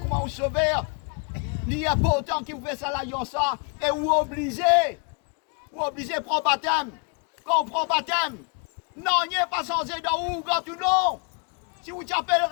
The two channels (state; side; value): quieter; right; 35.3 dB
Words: au Sauveur. Il est important qu'il vous fait ça, ça, et vous obligez. Vous obligez à prendre baptême. Quand on prend baptême, non, il n'est pas censé dans où, quand ou non. Si vous appelez